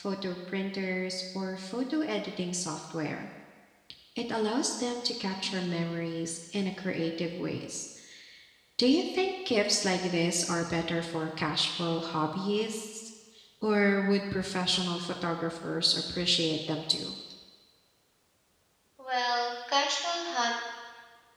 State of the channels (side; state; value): both; identical; correlation 1.00